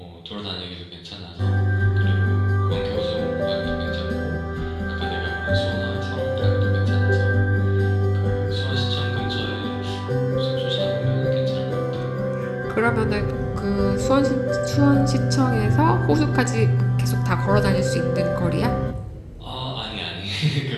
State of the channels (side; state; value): both; identical; correlation 1.00